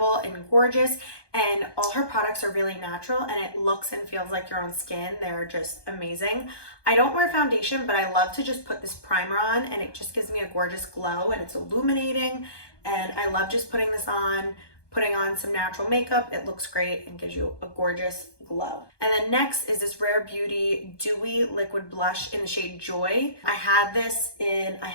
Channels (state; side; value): late; right; 1.2 ms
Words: and gorgeous, and all her products are really natural, and it looks and feels like your own skin. They're just amazing. I don't wear foundation, but I love to just put this primer on, and it just gives me a gorgeous glow, and it's illuminating, and I love just putting this on, putting on some natural makeup. It looks great and gives you a gorgeous glow. And then next is this Rare Beauty Dewy Liquid Blush in the shade Joy. I have this in